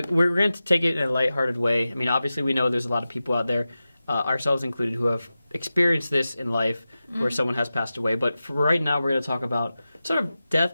going to take it in a lighthearted way. I mean, obviously, we know there's a lot of people out there, ourselves included, who have experienced this in life, where someone has passed away. But for right now, we're going to talk about sort of death,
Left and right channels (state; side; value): inverted; both; correlation -0.94